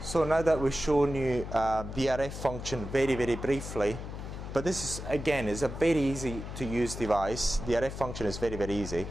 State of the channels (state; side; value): noise; left; hum, 8 dB below the sound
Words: So now that we've shown you the RF function very, very briefly, but this is, again, is a very easy to use device. The RF function is very, very easy.